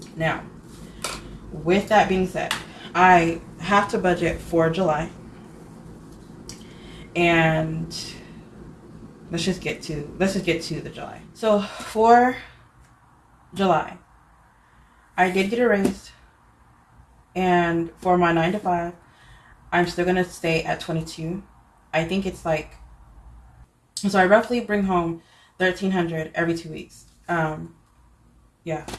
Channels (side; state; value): both; identical; correlation 1.00